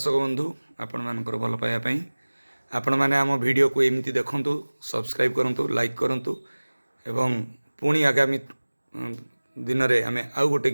बंधु आपण मानकर भल पाइबा पई आपण माने आम वीडियो को एमती देखंतु सब्सक्राइब करंतु लाइक करंतु एवं पुणी आगामी दिन रे आमे आउ गोटे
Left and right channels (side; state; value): both; inverted; correlation -1.00